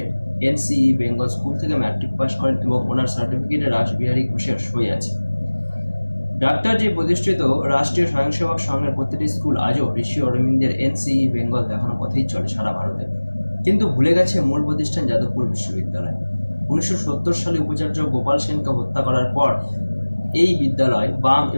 এনসিই বেঙ্গল স্কুল থেকে ম্যাট্রিক পাস করেন এবং ওনার সার্টিফিকেটে রাসবিহারী ঘোষের সই আছে। ডাক্তার জি প্রতিষ্ঠিত রাষ্ট্রীয় স্বয়ংসেবক সংঘের প্রতিটি স্কুল আজও ঋষি অরবিন্দের এনসিই বেঙ্গল দেখানো পথেই চলে সারা ভারতে। কিন্তু ভুলে গেছে মূল প্রতিষ্ঠান যাদবপুর বিশ্ববিদ্যালয়। 1970 সালে উপাচার্য গোপাল সেনকে হত্যা করার পর এই বিদ্যালয় বাম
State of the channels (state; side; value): inverted; both; correlation -1.00